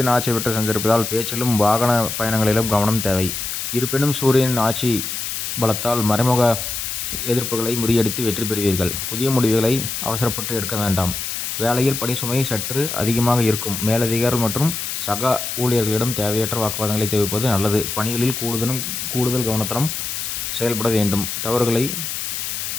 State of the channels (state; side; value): noise; left; hiss, 4 dB below the sound